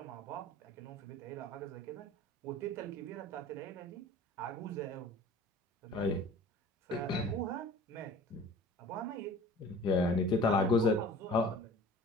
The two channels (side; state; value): both; normal; correlation 0.44